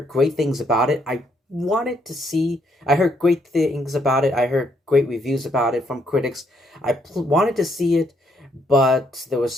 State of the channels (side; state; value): both; normal; correlation 0.72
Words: great things about it. I heard great things about it. I heard great reviews about it from critics. Wanted to see it, but there was